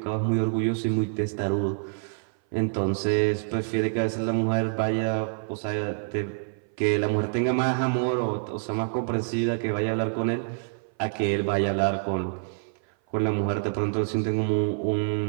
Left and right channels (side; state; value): left; silent; 58 dB below the other